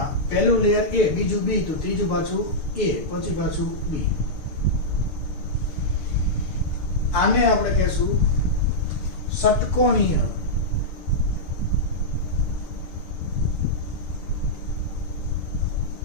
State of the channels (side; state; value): right; late; 6.7 ms